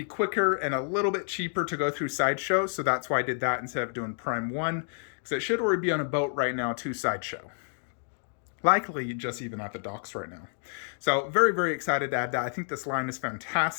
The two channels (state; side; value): silent; right; digital silence